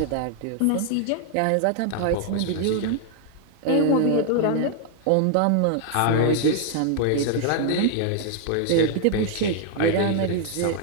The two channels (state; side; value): different; both; correlation 0.00